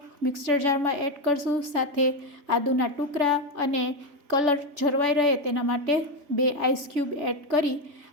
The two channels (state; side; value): late; left; 3.4 ms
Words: મિક્સર જારમાં એડ કરશું. સાથે આદુના ટુકડા અને કલર જળવાઈ રહે તેના માટે 2 આઈસ ક્યુબ એડ કરી